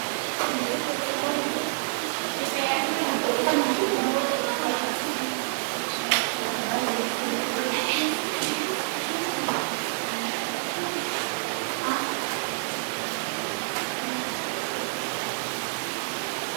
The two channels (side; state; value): left; silent; digital silence